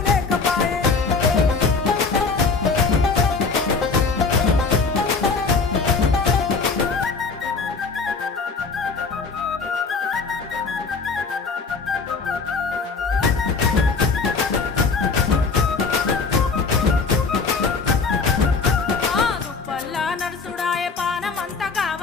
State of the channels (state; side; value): quieter; right; 4.6 dB